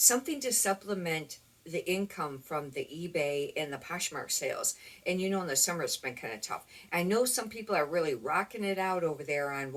to supplement the income from the eBay and the Poshmark sales. And you know, in the summer it's been kind of tough. I know some people are really rocking it out over there on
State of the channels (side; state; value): both; identical; correlation 1.00